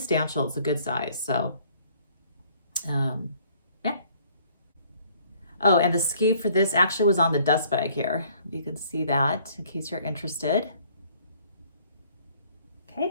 It's a good size. So, yeah. Oh, and the SKU for this actually was on the dust bag here. You can see that in case you're interested.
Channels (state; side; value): inverted; both; correlation -0.60